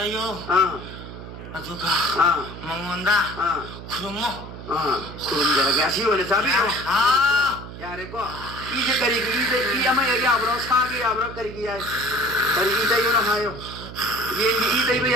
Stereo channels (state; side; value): noise; right; hum, 12 dB below the sound